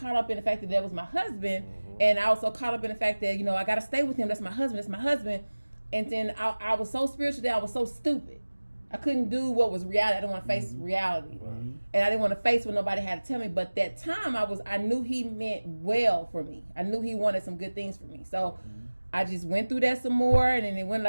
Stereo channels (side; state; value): both; inverted; correlation -1.00